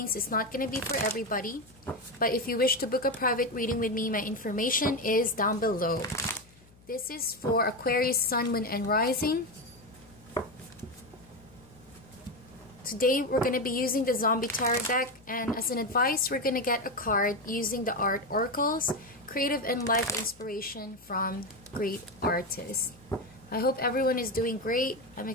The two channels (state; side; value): noise; left; hum, 27 dB below the sound